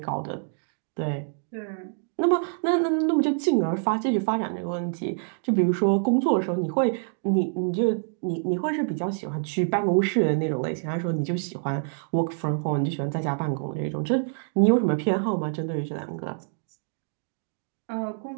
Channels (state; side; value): silent; left; 61 dB below the other